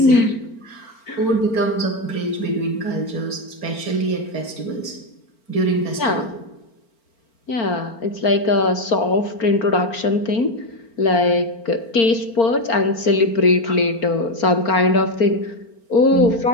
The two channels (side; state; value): right; late; 4.4 ms